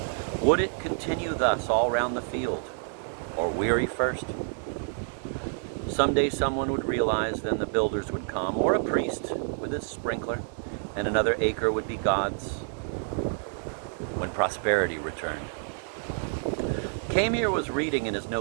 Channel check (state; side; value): silent; left; digital silence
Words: Would it continue thus all round the field, or weary first? Someday someone would realize, then the builders would come, or a priest with his sprinkler, and another acre would be God's, when prosperity returned. Camier was reading in his